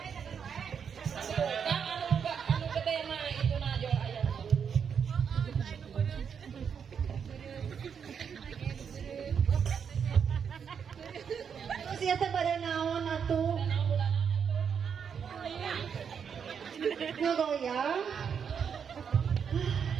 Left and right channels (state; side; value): quieter; left; 7.1 dB